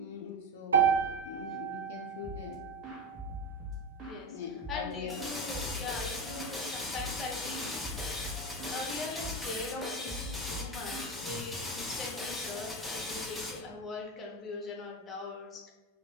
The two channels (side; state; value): both; normal; correlation 0.19